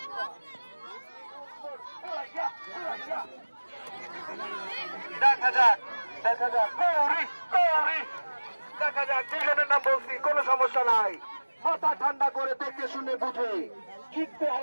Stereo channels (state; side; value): inverted; both; correlation -1.00